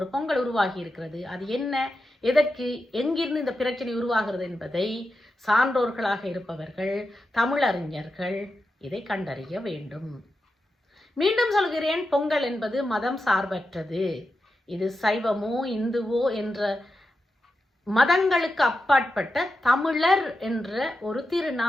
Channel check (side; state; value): both; normal; correlation 0.89